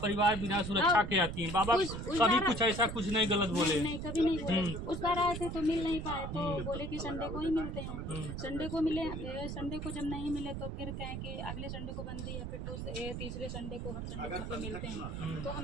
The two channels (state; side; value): noise; right; rumble, 5 dB below the sound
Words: परिवार बिना सुरक्षा के आती हैं। बाबा कभी कुछ ऐसा कुछ नहीं गलत बोले? नहीं, कभी नहीं बोले। उस बार आए थे तो मिल नहीं पाए, तो बोले कि संडे को ही मिलते हैं। संडे को मिले, संडे को जब नहीं मिले तो फिर कहें कि अगले संडे को बंदी है, फिर तो तीसरे संडे को हर संडे को मिलते हैं। तो